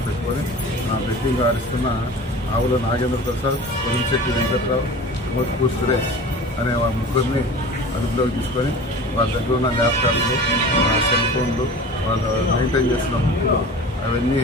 పెట్టుకొని బెట్టింగ్ ఆడిస్తున్న ఆవుల నాగేంద్ర ప్రసాద్, కొలింశెట్టి వెంకట్రావు, మోత్పూర్ సురేష్ అనే వాళ్ళ ముగ్గురిని అదుపులోకి తీసుకొని వాళ్ళ దగ్గర ఉన్న ల్యాప్టాప్లు, సెల్ ఫోన్లు, వాళ్ళు మెయింటైన్ చేస్తున్న బుక్లు అవన్నీ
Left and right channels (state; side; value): normal; both; correlation 0.38